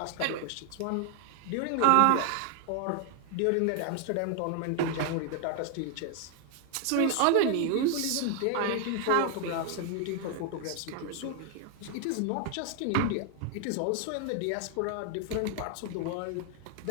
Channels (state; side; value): different; both; correlation 0.00